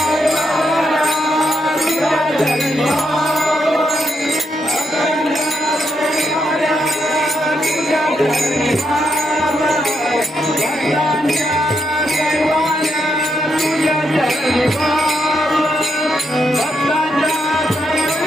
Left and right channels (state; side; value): normal; both; correlation 0.80